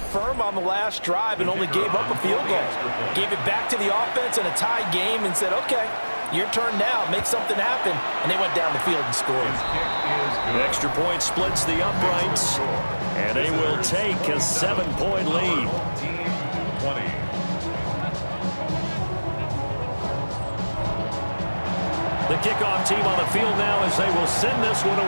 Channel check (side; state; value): both; inverted; correlation -1.00